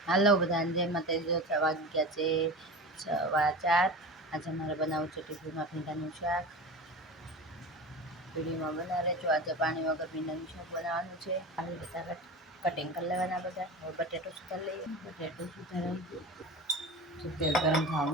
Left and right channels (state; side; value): normal; both; correlation 0.30